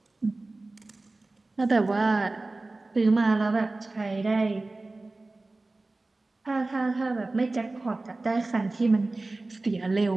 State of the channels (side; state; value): left; quieter; 3.1 dB